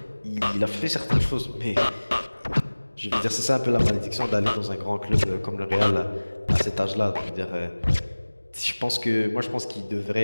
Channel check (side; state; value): both; inverted; correlation -1.00